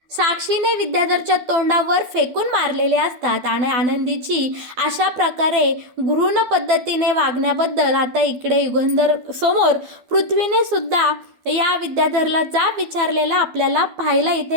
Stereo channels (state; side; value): late; left; 12 ms